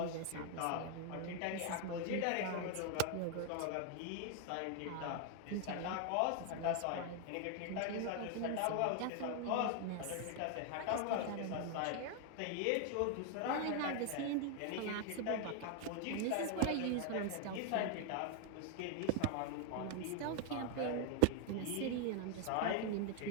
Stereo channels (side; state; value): both; different; correlation 0.00